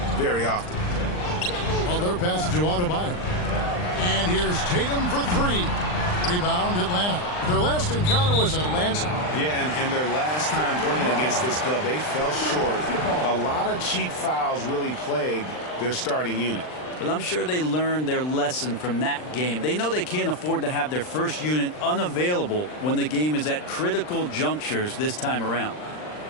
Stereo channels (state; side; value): late; right; 39 ms